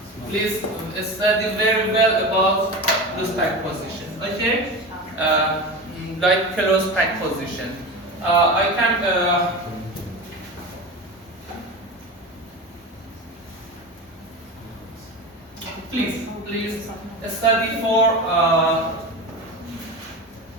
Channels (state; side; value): normal; both; correlation 0.27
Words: Please study very well about loose pack position. Okay? Like close pack position. I can. Please study